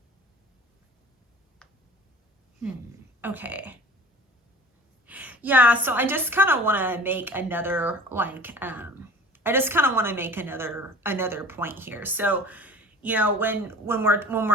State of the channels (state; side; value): normal; both; correlation 0.43